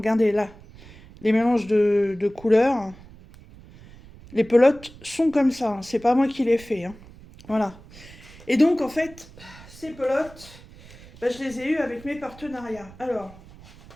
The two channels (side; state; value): right; noise; rumble, 21 dB below the sound